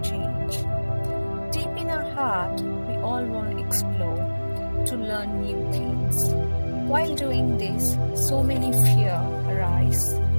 change. Deep in our heart, we all want to explore, to learn new things. While doing this, so many fear arise,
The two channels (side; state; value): both; inverted; correlation -1.00